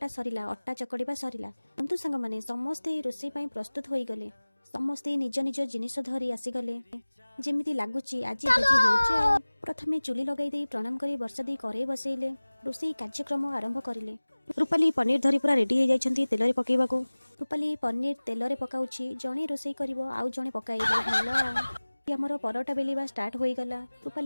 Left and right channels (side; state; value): both; inverted; correlation -1.00